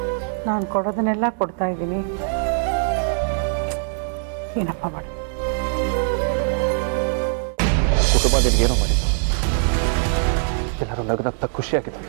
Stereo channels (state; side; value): silent; left; digital silence